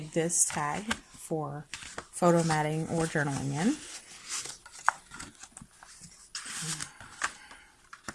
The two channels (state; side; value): identical; both; correlation 1.00